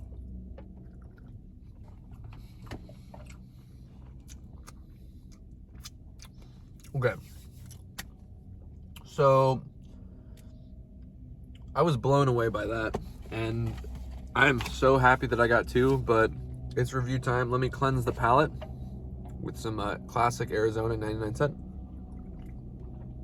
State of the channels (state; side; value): identical; both; correlation 1.00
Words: Okay. So I was blown away by that, and I'm so happy that I got two, but it's review time. Let me cleanse the palate with some classic Arizona 99-cent